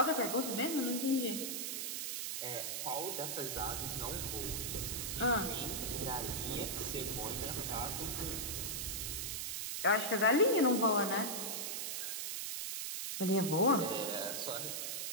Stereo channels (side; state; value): right; noise; hiss, 3 dB below the sound